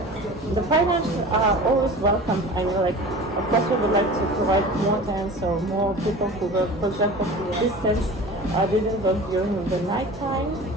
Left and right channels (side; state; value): both; normal; correlation 0.38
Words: the financials are always welcome. I mean, like, of course, we would like to provide more tents or more people who work, for example, distance didn't work during the night time.